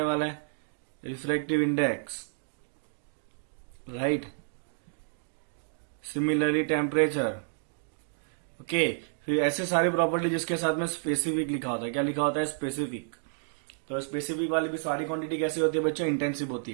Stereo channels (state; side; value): silent; left; digital silence